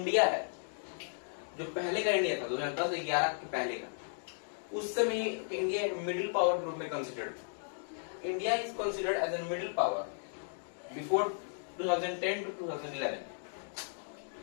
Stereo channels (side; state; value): right; silent; digital silence